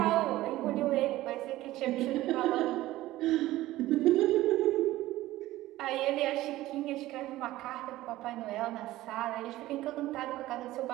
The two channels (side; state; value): left; quieter; 16.3 dB